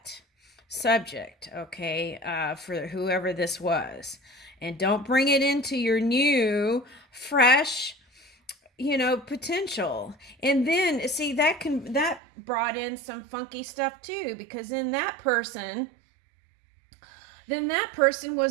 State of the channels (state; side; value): drops out; left; at 12.2 s